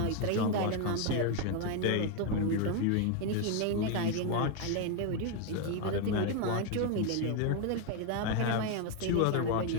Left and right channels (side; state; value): both; different; correlation 0.01